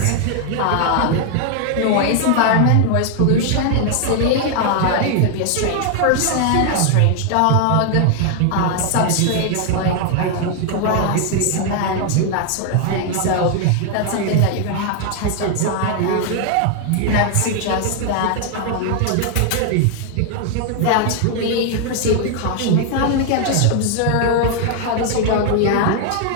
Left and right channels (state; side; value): different; both; correlation 0.00